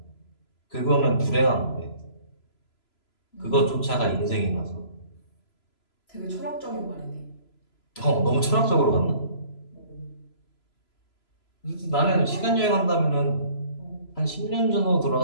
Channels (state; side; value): late; right; 3.0 ms